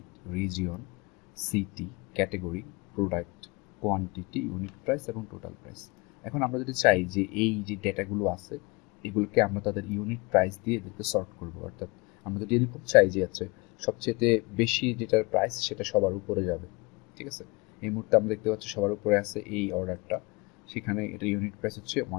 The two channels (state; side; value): quieter; right; 26.3 dB